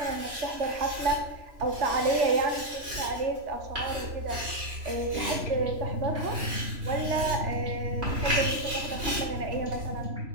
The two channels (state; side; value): late; left; 3.1 ms